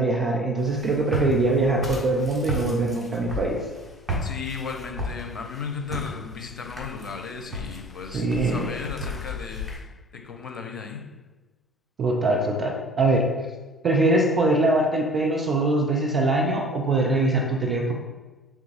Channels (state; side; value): normal; both; correlation 0.47